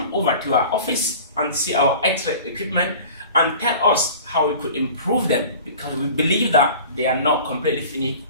over to our office and see our X-ray equipment and tell us how we could improve them, because we believe that they are not completely finished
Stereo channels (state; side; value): inverted; both; correlation -0.41